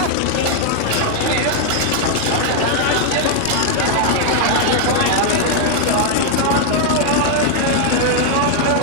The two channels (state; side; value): different; both; correlation 0.00